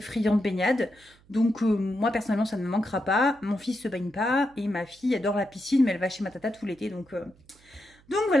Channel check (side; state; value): right; noise; hum, 29 dB below the sound